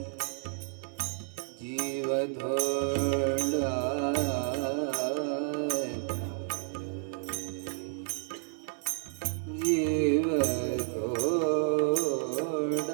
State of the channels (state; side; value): silent; left; 57 dB below the other